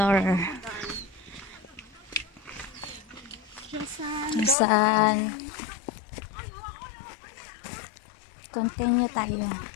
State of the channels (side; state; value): right; drops out; at 4.5 s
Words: Saan? Continue tayo.